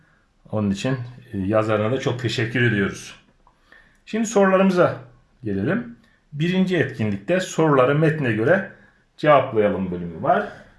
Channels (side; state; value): both; identical; correlation 1.00